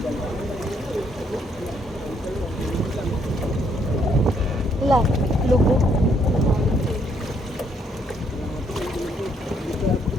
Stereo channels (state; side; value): normal; both; correlation 0.70